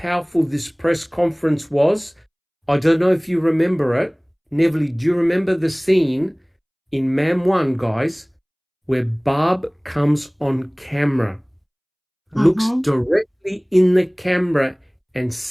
this press conference was, I don't know if you remember it. Neverly, do you remember the scene in Mam 1, guys, where Barb comes on camera, looks directly in the camera and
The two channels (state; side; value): identical; both; correlation 1.00